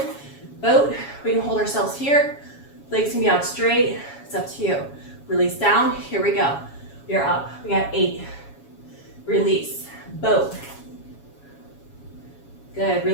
boat. We can hold ourselves here. Legs can be out straight. It's up to you. Release down. Here we go. You're up. We got 8. Release. Boat. Good.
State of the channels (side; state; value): right; late; 7.2 ms